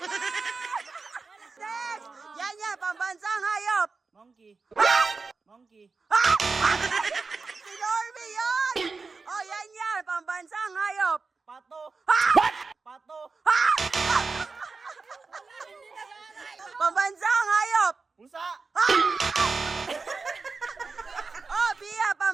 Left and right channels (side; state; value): left; quieter; 4.3 dB